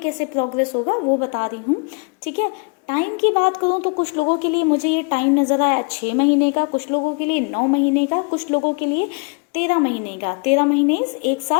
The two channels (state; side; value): quieter; right; 34.3 dB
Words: प्रोग्रेस होगा वो बता रही हूँ, ठीक है। टाइम की बात करूँ तो कुछ लोगों के लिए मुझे ये टाइम नज़र आया 6 महीने का, कुछ लोगों के लिए 9 महीने का, कुछ लोगों के लिए 13 महीने का। 13 महीने 1